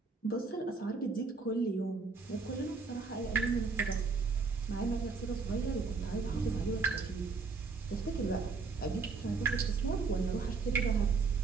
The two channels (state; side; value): quieter; left; 4.6 dB